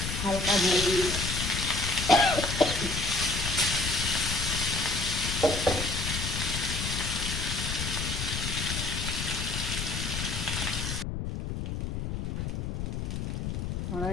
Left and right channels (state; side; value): noise; left; rumble, 3 dB below the sound